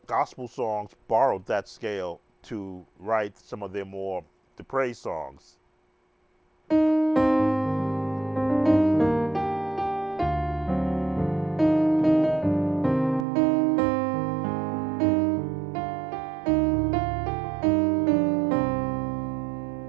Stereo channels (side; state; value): left; drops out; at 13.2 s